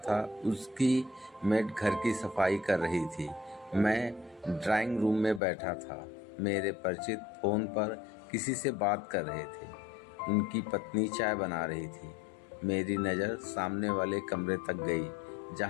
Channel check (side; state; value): right; drops out; at 5.4 s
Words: उसकी मेड घर की सफाई कर रही थी। मैं ड्राइंग रूम में बैठा था। मेरे परिचित फोन पर किसी से बात कर रहे थे। उनकी पत्नी चाय बना रही थी। मेरी नज़र सामने वाले कमरे तक गई